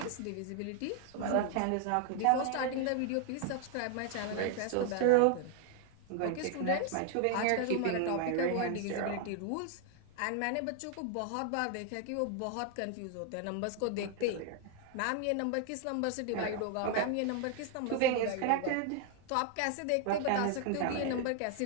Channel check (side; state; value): both; different; correlation 0.00